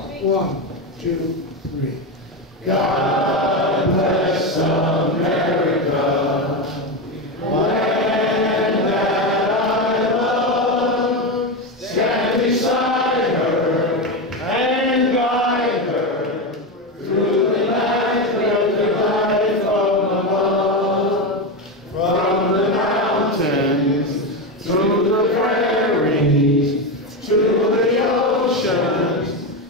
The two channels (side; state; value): both; normal; correlation 0.14